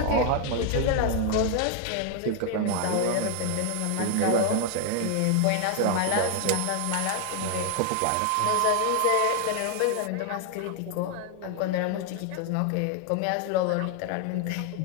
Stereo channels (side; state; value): both; different; correlation 0.00